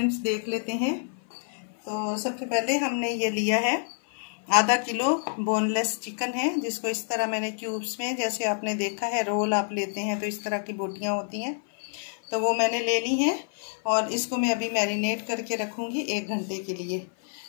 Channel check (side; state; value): right; silent; 56 dB below the other